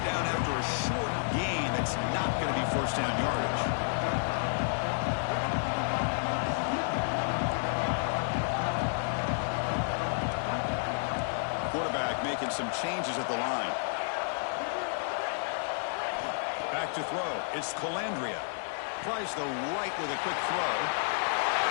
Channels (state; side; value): silent; right; digital silence